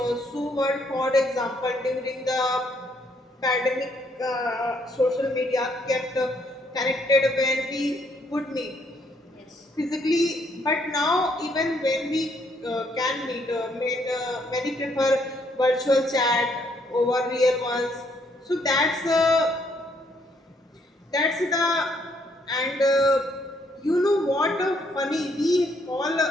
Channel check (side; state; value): both; normal; correlation 0.70